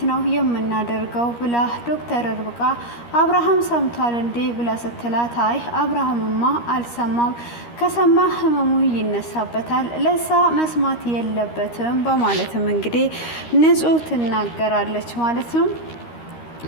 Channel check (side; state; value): right; late; 13 ms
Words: ነው የምናደርገው ብላ ዶክተር ርብቃ አብርሃም ሰምቷል እንዴ ብላ ስትላት አይ አብርሃምማ አልሰማም፣ ከሰማ ህመሙ ይነሳበታል፣ ለሳ መስማት የለበትም በማለትም እንግዲህ ንጹህ ትናገራለች ማለት ነው።